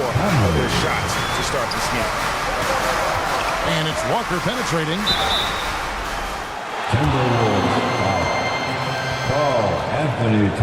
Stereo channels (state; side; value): identical; both; correlation 1.00